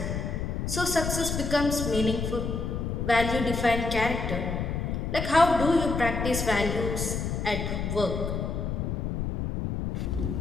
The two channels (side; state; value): left; noise; rumble, 2 dB below the sound